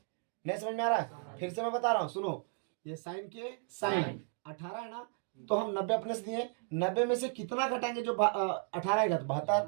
समझ में आ रहा है? फिर से मैं बता रहा हूँ, सुनो। ये साइन के साइन 18 है ना, तो हम 90 अपने से दिए। 90 में से कितना घटाएंगे? जो 18 आएगा तो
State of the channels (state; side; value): silent; left; 55 dB below the other